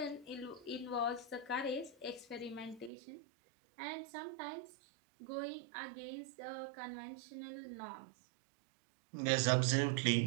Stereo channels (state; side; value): drops out; left; at 2.9 s